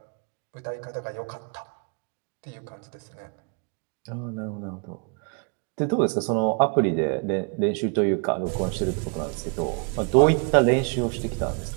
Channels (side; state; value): left; quieter; 35.6 dB